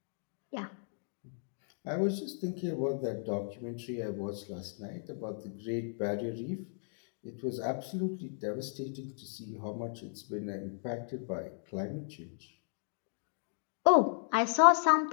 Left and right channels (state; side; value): silent; right; digital silence